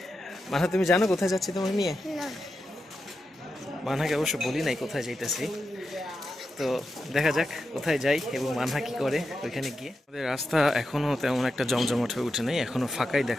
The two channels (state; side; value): normal; both; correlation 0.89